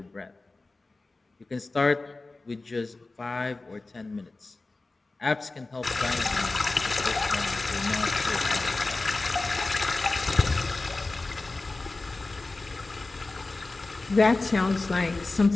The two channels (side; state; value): right; quieter; 3.3 dB